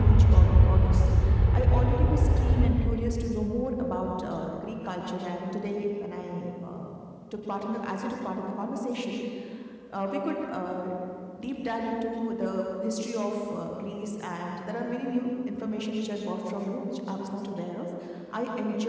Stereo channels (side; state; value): both; identical; correlation 1.00